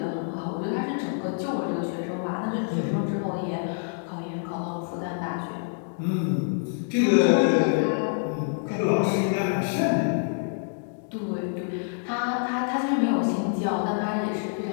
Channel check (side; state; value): right; silent; digital silence